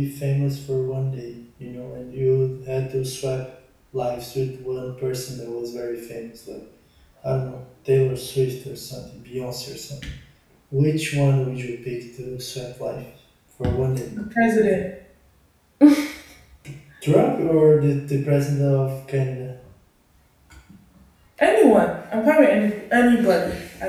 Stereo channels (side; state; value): both; identical; correlation 1.00